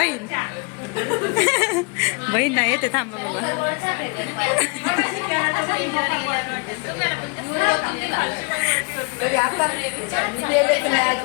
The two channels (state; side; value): quieter; right; 32.3 dB